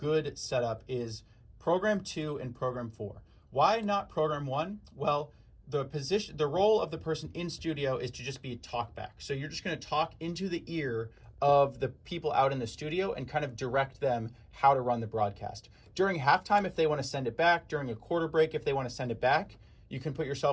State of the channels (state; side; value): identical; both; correlation 1.00